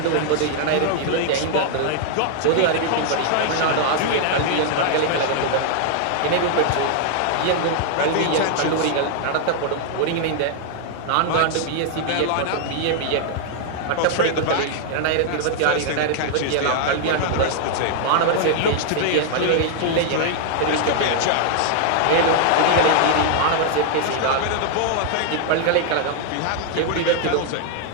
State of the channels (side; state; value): both; different; correlation -0.01